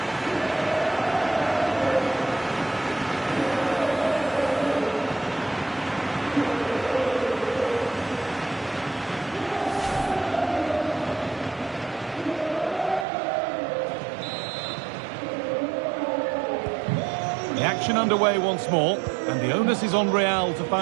The action underway once more, and the onus is on Real to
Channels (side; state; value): left; drops out; at 13.1 s